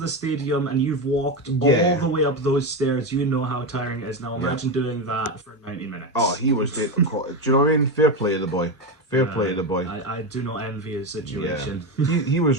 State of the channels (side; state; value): both; normal; correlation 0.15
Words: stadium and you've walked all the way up those stairs, you know how tiring it is. Now imagine doing that for 90 minutes. Oh, he was dead. Do you know what I mean? Fair play to the boy. Fair play to the boy. I do not envy his situation. Yeah. he